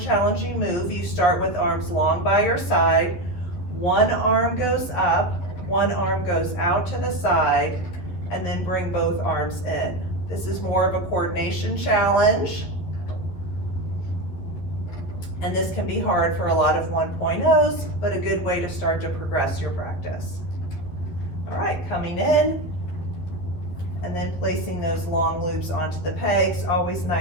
move. You start with arms long by your side. One arm goes up, one arm goes out to the side, and then bring both arms in. This is more of a coordination challenge. And this can be hard for a lot of 1.0s, but a good way to start to progress your practice. All right, coming in, and then placing those long loops onto the pegs. Always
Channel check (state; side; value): late; right; 12 ms